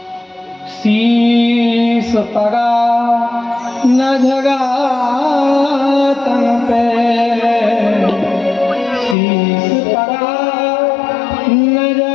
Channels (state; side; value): drops out; right; at 9.2 s